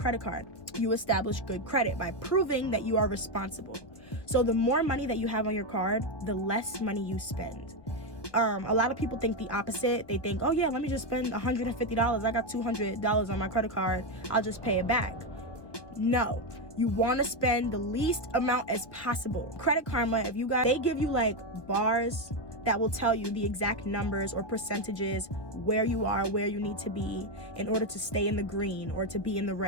card. You establish good credit by proving that you are responsible. So the more money that you have on your card, the less money you spend. A lot of people think the opposite. They think, oh yeah, let me just spend $150. I got $200 on my credit card. I'll just pay it back. No, you want to spend the least amount as possible. Credit Karma, they give you like bars that will tell you the exact numbers or percentages where you are, where you need to be in order to stay in the green or to be in the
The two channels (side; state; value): right; late; 1.3 ms